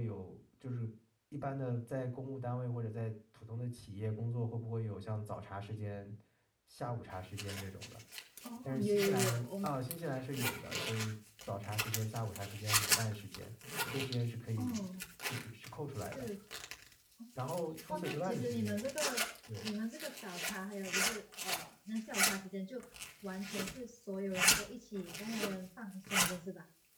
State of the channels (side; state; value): both; identical; correlation 1.00